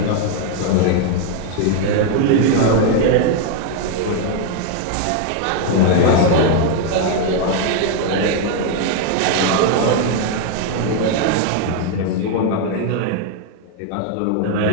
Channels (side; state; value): both; different; correlation 0.00